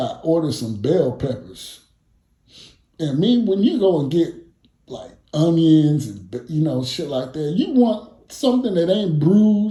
ordered some bell peppers. And when you go and get like onions and shit like that, you want something that ain't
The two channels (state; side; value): identical; both; correlation 1.00